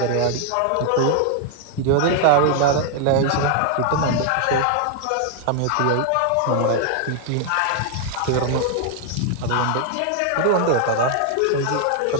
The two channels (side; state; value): both; different; correlation 0.00